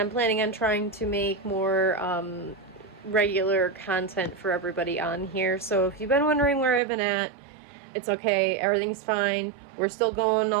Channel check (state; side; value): drops out; left; at 6.8 s